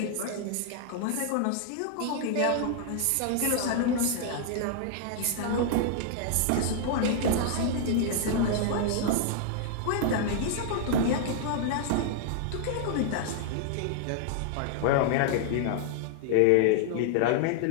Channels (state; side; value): different; both; correlation -0.01